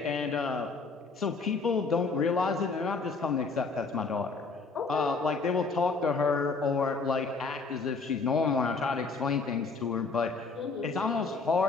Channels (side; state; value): right; quieter; 4.3 dB